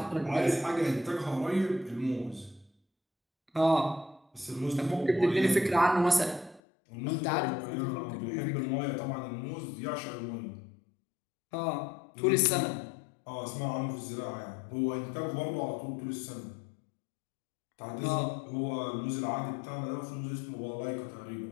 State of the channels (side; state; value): right; drops out; at 6.6 s